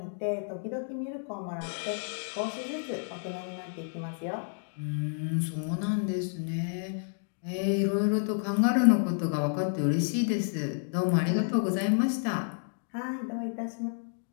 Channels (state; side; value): silent; right; digital silence